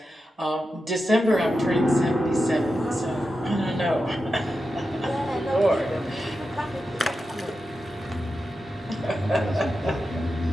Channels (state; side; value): normal; both; correlation 0.90